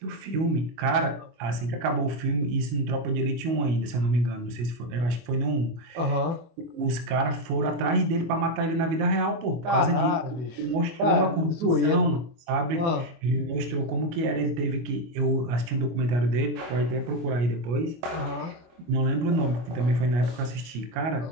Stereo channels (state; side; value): late; left; 25 ms